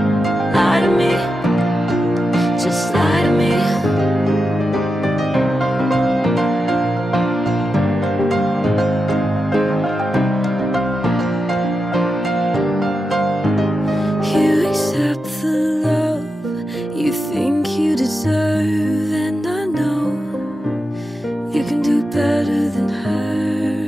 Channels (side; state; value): both; normal; correlation 0.89